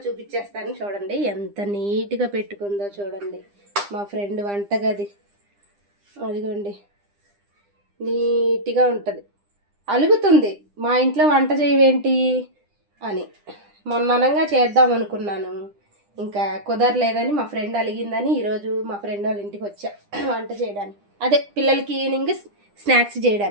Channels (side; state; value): left; late; 9.9 ms